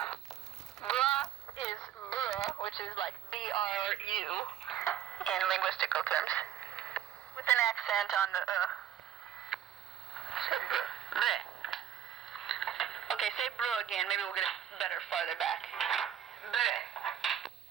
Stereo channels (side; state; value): left; quieter; 10.0 dB